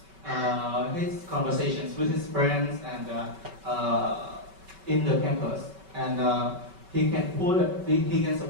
his conversations with his friends and in the campus, and he can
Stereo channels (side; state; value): left; late; 5.2 ms